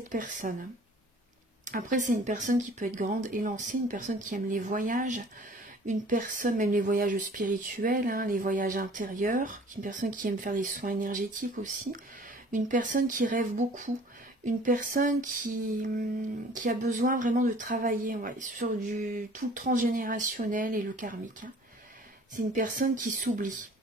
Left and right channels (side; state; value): both; normal; correlation 0.50